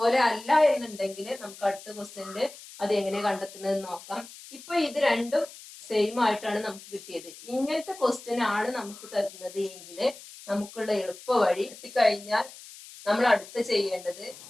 അല്ല എന്നുണ്ടെങ്കിൽ നമുക്ക് അടുത്ത ക്വസ്റ്റ്യനിൽ അത് എങ്ങനെ കണ്ടെത്തുന്നത് നോക്കാം. ഇപ്പൊ ഇത് രണ്ടും സെയിം ആയിട്ടാണ് നമുക്ക് കിട്ടിയത്. ഇങ്ങനത്തെ ക്വസ്റ്റ്യൻ ആണ് നമുക്ക് തരുന്നത് എങ്കിൽ നമുക്കുള്ള എളുപ്പ വഴി കിട്ടിക്കഴിഞ്ഞാൽ നമ്മൾ അടുത്ത് ചെയ്യേണ്ടത്,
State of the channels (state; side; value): noise; left; hiss, 17 dB below the sound